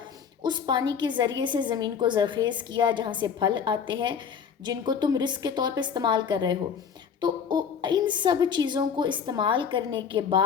اس پانی کے ذریعے سے زمین کو زرخیز کیا جہاں سے پھل آتے ہیں جن کو تم رزق کے طور پہ استعمال کر رہے ہو۔ تو ان سب چیزوں کو استعمال کرنے کے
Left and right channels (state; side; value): quieter; right; 7.0 dB